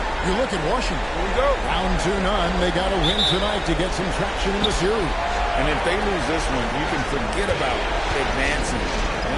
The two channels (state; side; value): identical; both; correlation 1.00